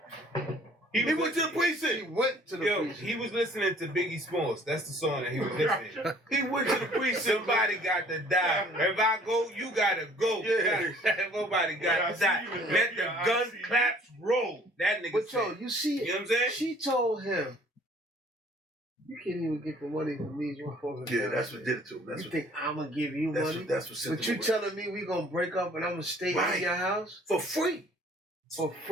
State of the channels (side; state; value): both; normal; correlation 0.55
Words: He went to the precinct. He went to the precinct. He was listening to Biggie Smalls. That's the song that he was listening to. He went to the precinct. Somebody got to die. If I go, you gotta go. Yeah. Nobody got to die. Let the gun claps roll. That nigga But said. you see, You know what I'm saying? she told him, you can't even get the money from these motherfuckers. Yeah, that's what did it to him. You think I'm gonna give you money? That's what sent But you telling me we gonna break up and I'm gonna stay in your house? for free. For